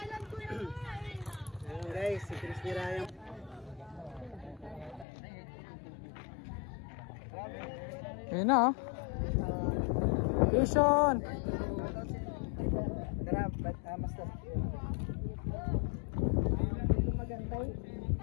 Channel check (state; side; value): drops out; right; at 5.1 s